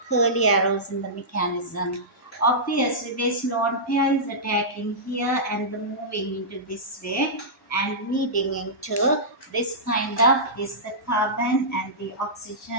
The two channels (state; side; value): normal; both; correlation -0.15